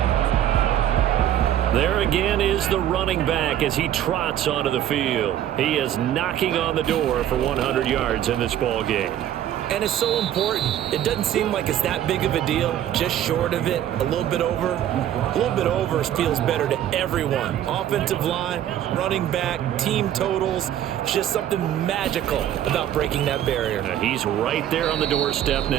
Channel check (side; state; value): left; quieter; 11.3 dB